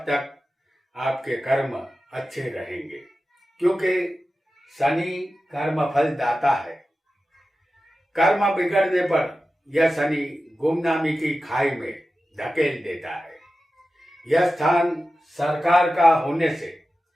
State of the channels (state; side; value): normal; both; correlation 0.93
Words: तक आपके कर्म अच्छे रहेंगे, क्योंकि शनि कर्म फल दाता है। कर्म बिगड़ने पर यह शनि गुमनामी की खाई में धकेल देता है। यह स्थान सरकार का होने से